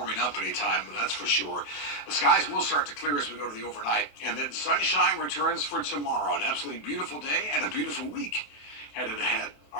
up anytime, that's for sure. The skies will start to clear as we go to the overnight. And then sunshine returns for tomorrow. An absolutely beautiful day and a beautiful week headed ahead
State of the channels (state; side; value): late; right; 28 ms